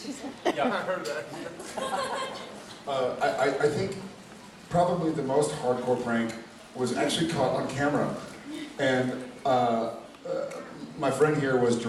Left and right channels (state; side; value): identical; both; correlation 1.00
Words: Yeah, I heard that. I think probably the most hardcore prank was actually caught on camera. And my friend here was